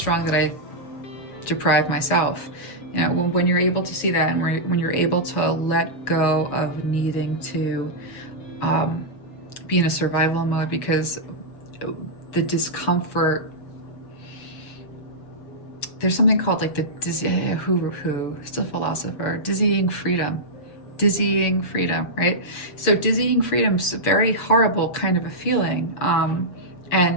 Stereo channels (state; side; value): late; right; 7.1 ms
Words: that I deprive myself. You know, when you're able to see that, and when you're able to let go of needing to be in a survival mode, because the discomfort there's something called like the who's a philosopher, dizzying freedom. Dizzying freedom, right? So dizzying freedom is a very horrible kind of a feeling.